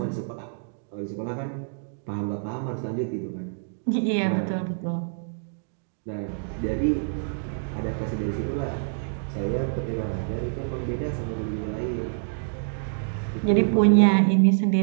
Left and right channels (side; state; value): left; silent; digital silence